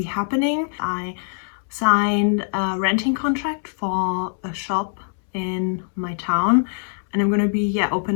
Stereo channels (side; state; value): right; silent; 64 dB below the other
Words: happening. I signed a renting contract for a shop in my town, and I'm going to be